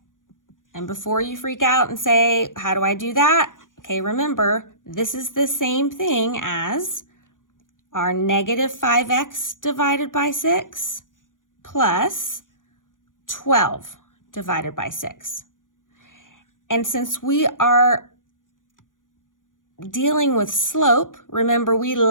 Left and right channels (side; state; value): right; late; 0.88 ms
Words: And before you freak out and say, how do I do that? Okay, remember, this is the same thing as our negative 5x divided by 6 plus 12 divided by 6. And since we are dealing with slope, remember we